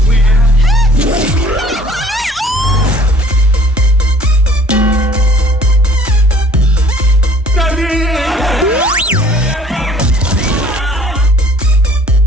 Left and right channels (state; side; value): normal; both; correlation 0.54